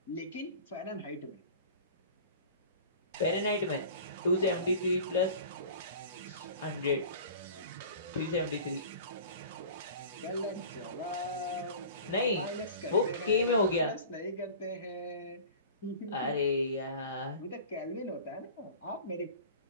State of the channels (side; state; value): both; inverted; correlation -0.40